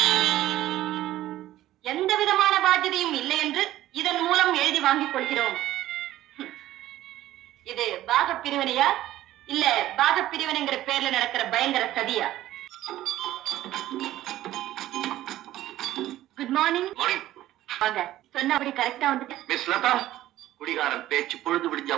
என்று இதன் மூலம் எழுதி வாங்கிக் கொள்கிறோம். இது பாக பிரிவினையா இல்ல பாக பிரிவினைங்கிற பேர்ல நடக்கிற பயங்கர சதியா? Good morning. வாங்க. சொன்னபடி கரெக்டா வந்துட்டு. மிஸ் லதா, குடிகாரன் பேச்சு பொழுது விடிஞ்சா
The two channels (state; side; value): quieter; left; 14.3 dB